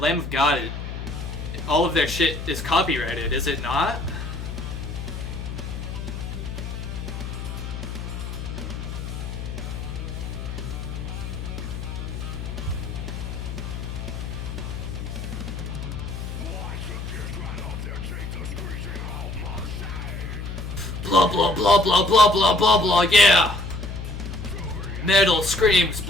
Lamb of God, all of their shit is copyrighted, is it not? Blah blah blah blah blah blah blah blah, yeah! Metal screams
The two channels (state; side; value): noise; left; hum, 6 dB below the sound